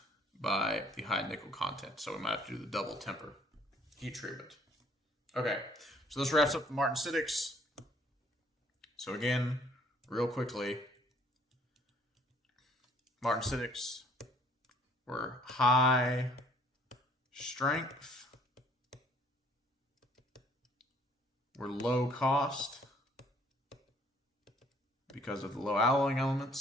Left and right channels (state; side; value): normal; both; correlation 0.60